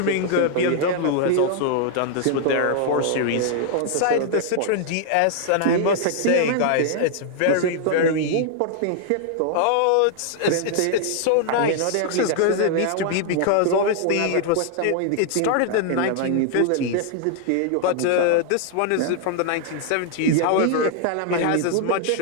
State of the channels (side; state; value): both; different; correlation 0.00